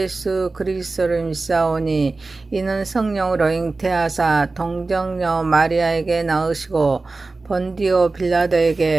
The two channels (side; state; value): left; quieter; 3.6 dB